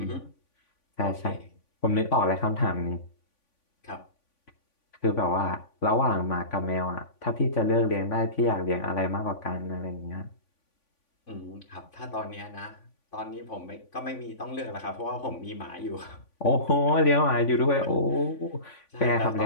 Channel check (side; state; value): right; late; 3.5 ms